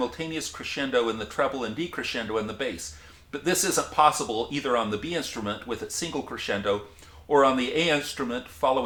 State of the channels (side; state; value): both; identical; correlation 1.00